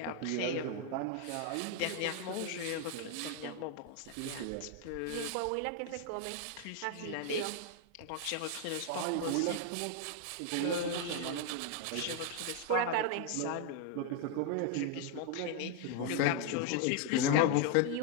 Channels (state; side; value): different; both; correlation 0.01